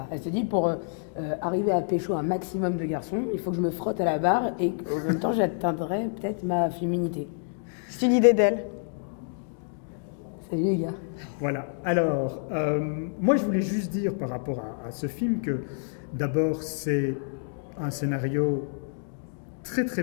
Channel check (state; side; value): silent; right; digital silence